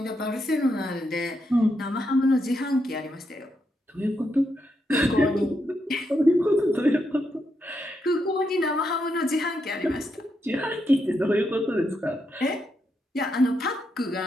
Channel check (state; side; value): normal; both; correlation 0.82